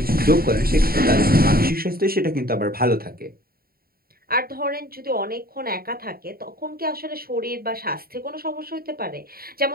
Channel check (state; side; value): late; left; 0.43 ms